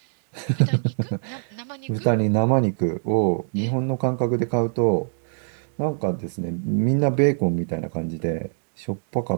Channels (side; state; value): left; silent; digital silence